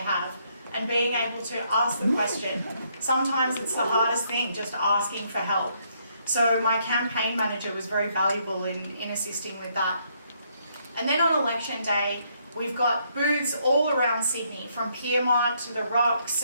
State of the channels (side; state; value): both; inverted; correlation -0.72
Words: and being able to ask the question. Sometimes it's the hardest thing, just asking for help. So my campaign manager was very valuable in assisting with that. And then on election day, we've got booths all around Sydney, from Piedmont to the Rocks,